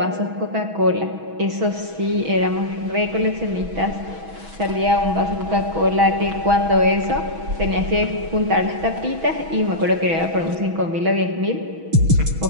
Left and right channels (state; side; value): late; left; 6.2 ms